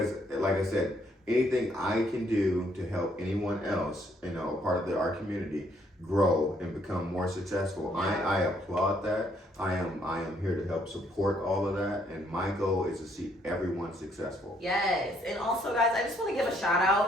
like I said, anything I can do to help anyone else, part of our community, grow and become more successful, I applaud that. I am here to help support all of that, and my goal is to see everyone successful. Yes, and also guys, I just want to give a shout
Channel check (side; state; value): both; normal; correlation 0.69